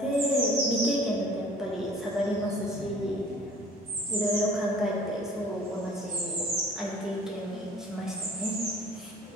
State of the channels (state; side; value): normal; both; correlation 0.50